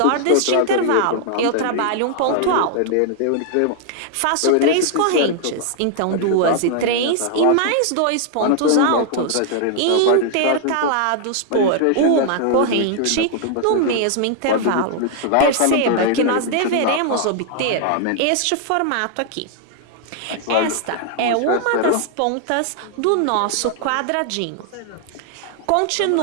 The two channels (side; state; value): both; different; correlation 0.00